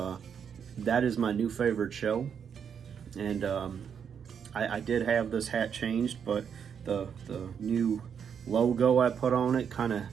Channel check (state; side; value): quieter; left; 7.5 dB